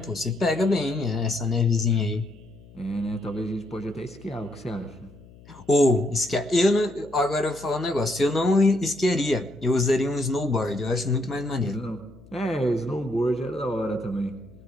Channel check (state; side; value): noise; left; hum, 22 dB below the sound